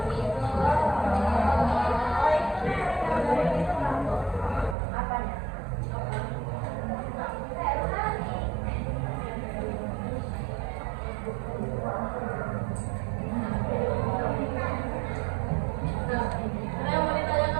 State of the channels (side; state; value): left; drops out; at 4.8 s